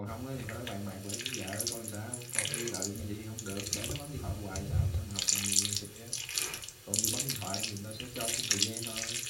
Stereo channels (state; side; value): identical; both; correlation 1.00